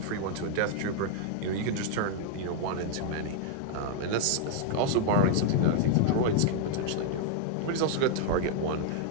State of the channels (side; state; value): both; different; correlation 0.00